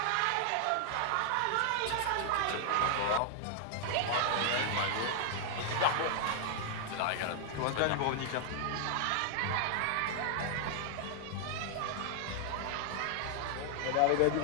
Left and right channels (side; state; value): both; different; correlation 0.00